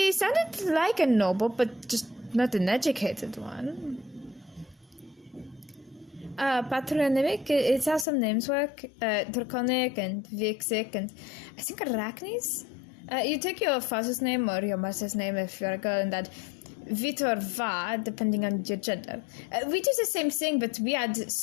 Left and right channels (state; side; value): drops out; right; at 8.1 s